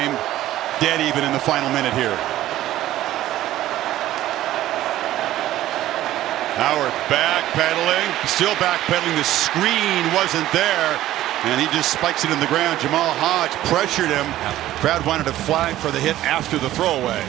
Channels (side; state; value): left; quieter; 14.1 dB